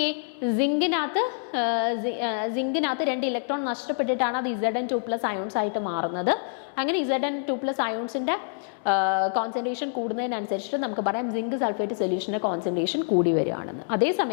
സിങ്കിനകത്ത് 2 ഇലക്ട്രോൺ നഷ്ടപ്പെട്ടിട്ടാണ് അത് Zn2+ അയോൺസ് ആയിട്ട് മാറുന്നത്. അങ്ങനെ Zn2+ അയോൺസിന്റെ കോൺസെൻട്രേഷൻ കൂടുന്നതിനനുസരിച്ചിട്ട് നമുക്ക് പറയാം സിങ്ക് സൾഫേറ്റ് സൊല്യൂഷന്റെ കോൺസെൻട്രേഷൻ കൂടി വരികയാണെന്ന്.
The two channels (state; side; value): silent; right; digital silence